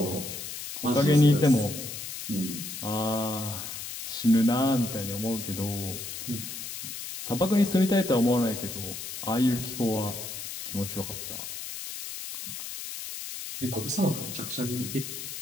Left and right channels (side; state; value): left; noise; hiss, 8 dB below the sound